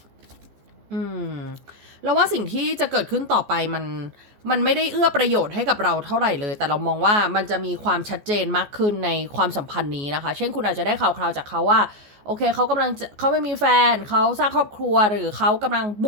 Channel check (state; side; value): late; left; 14 ms